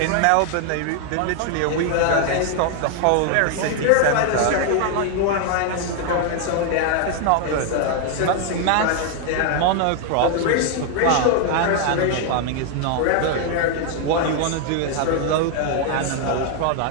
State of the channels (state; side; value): different; both; correlation 0.00